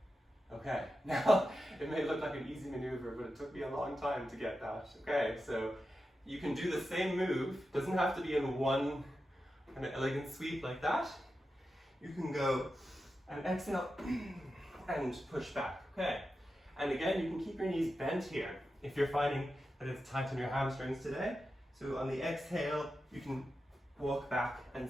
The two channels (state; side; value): normal; both; correlation 0.91